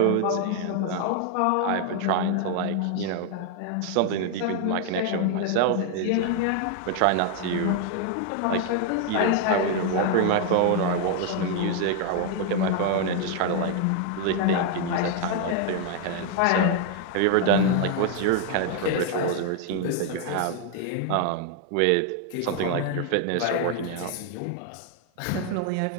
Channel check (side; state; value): both; different; correlation 0.00